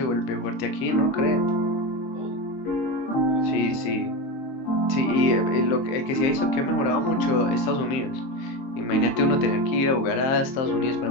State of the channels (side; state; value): right; late; 23 ms